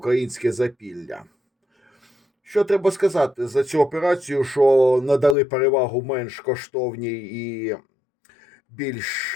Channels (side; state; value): right; drops out; at 5.4 s